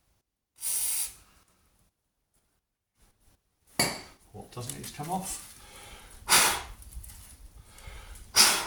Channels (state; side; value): identical; both; correlation 1.00